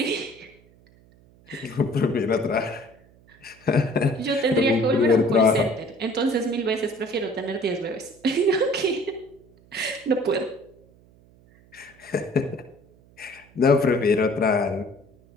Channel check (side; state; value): right; noise; hum, 28 dB below the sound